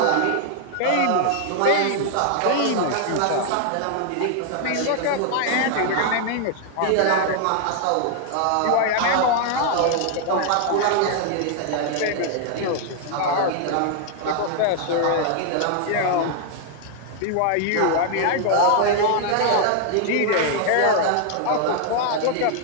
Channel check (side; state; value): both; different; correlation 0.00